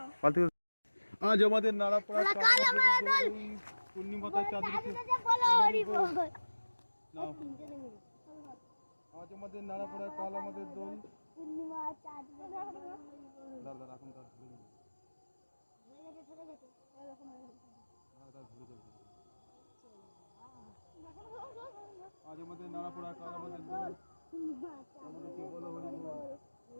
বালতি। আজ আমাদের নাড়া পড়া, কাল আমাদের দোল। পূর্ণিমাতায় চাঁদ উঠেছে, বলো হরি বল। নাও আজ আমাদের নাড়া পড়া, কাল আমাদের দোল। পূর্ণিমা চাঁদ দাঁড়া দাঁড়া, এখন তার ধরে যাবে। আজ আমাদের নাড়া পড়া, কাল আমাদের দোল। বলো হরি বল।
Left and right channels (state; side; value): inverted; both; correlation -1.00